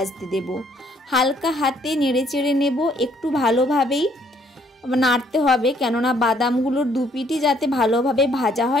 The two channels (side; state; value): both; normal; correlation 0.65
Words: দেব। হালকা হাতে নেড়ে চেড়ে নেব, একটু ভালোভাবেই নাড়তে হবে, কেননা বাদামগুলোর দুপিটি যাতে ভালোভাবে ভাজা